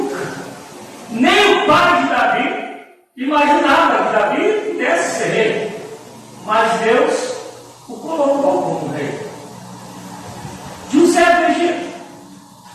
Nem o pai de Davi imaginava que Davi pudesse ser rei. Mas Deus o colocou como rei. José do Egito.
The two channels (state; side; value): identical; both; correlation 1.00